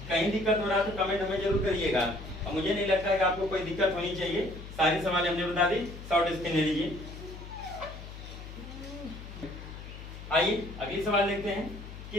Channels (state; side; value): noise; left; hum, 12 dB below the sound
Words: कहीं दिक्कत हो रहा है तो कमेंट हमें जरूर करिएगा, और मुझे नहीं लगता है कि आपको कोई दिक्कत होनी चाहिए। सारी सवाल हमने बता दी, शॉर्ट स्क्रीन ले लीजिए। आइए अगली सवाल देखते हैं।